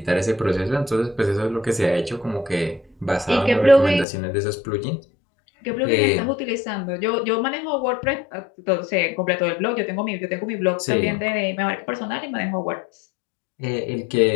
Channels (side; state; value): right; drops out; at 4.0 s